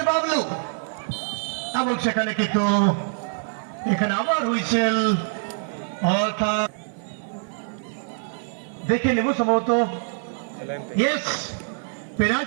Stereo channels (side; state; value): left; silent; digital silence